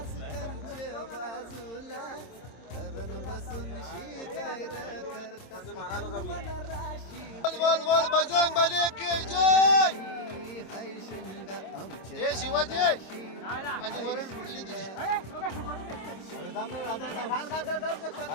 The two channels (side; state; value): right; late; 26 ms